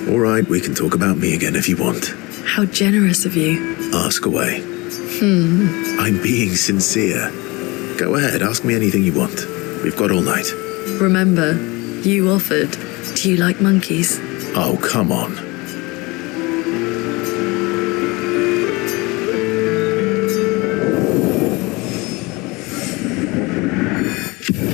All right, we can talk about me again if you want. How generous of you. Ask away. I'm being sincere. Go ahead, ask me anything you want. We've got all night. Remember, you offered. Do you like monkeys? Oh, come on.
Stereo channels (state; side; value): quieter; right; 24.2 dB